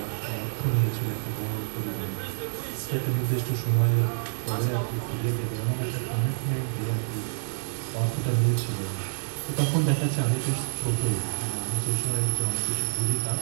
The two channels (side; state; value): left; silent; digital silence